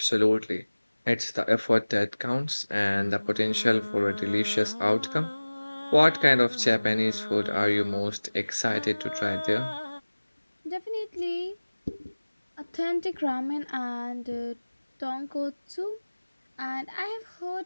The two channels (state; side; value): inverted; both; correlation -1.00